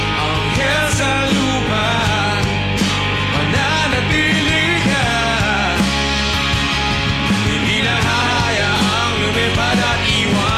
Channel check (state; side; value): identical; both; correlation 1.00